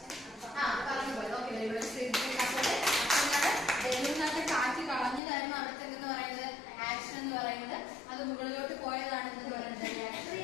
പറഞ്ഞു പോയത്. ഓക്കെ, ബലൂണിനകത്ത് കാറ്റ് കളഞ്ഞതായിരുന്നു അവിടുത്തെ എന്ന് പറയുന്നത് ആക്ഷൻ എന്ന് പറയുന്നത്. അത് മുകളിലോട്ട് പോയതാണ് എന്ന് പറയുന്നത്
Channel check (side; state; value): right; drops out; at 5.2 s